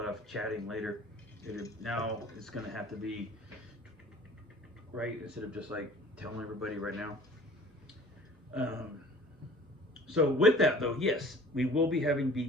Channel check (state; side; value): normal; both; correlation 0.46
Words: of chatting later. Now it's going to have to be right instead of just like telling everybody right now. So with that though, yes, we will be having